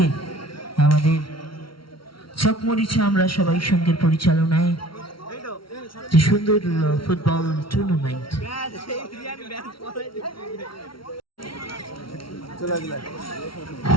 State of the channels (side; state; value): right; late; 0.74 ms